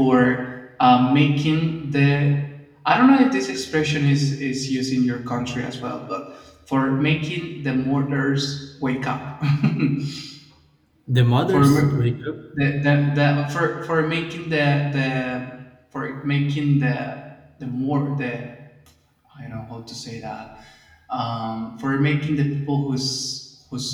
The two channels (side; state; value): both; identical; correlation 1.00